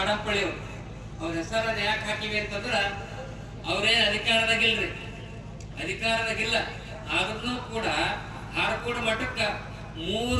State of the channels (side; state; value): both; identical; correlation 1.00